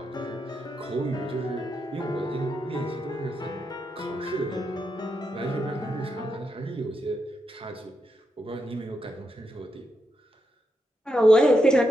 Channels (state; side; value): normal; both; correlation 0.84